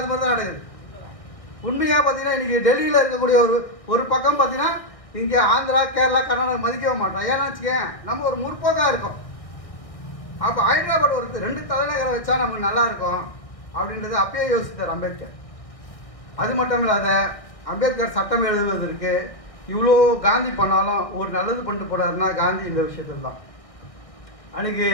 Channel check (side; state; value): right; late; 1.4 ms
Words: மாதிரி தான் நடக்குது. உண்மையாக பார்த்தீங்கன்னா இன்றைக்கி டெல்லியில் இருக்கக்கூடிய ஒரு பக்கம் பார்த்தீங்கன்னா இங்கே ஆந்திரா, கேரளா, கர்நாடகா மதிக்கவே மாட்டோம். ஏன்னா வச்சுக்கேன், நம்ம ஒரு முற்போக்காக இருக்கோம். அப்போ ஹைதராபாத் ஒரு 2 தலைநகரம் வச்சா நமக்கு நல்லா இருக்கும் அப்படின்றது அப்பயே யோசித்தார் அம்பேத்கர். அது மட்டும் இல்லாத அம்பேத்கர் சட்டம் எழுதுவதற்கு இவ்வளோ காந்தி பண்ணாலும் ஒரு நல்லது பண்ணிட்டு போனாருன்னா காந்தி இந்த விஷயத்தில் தான். அன்றைக்கி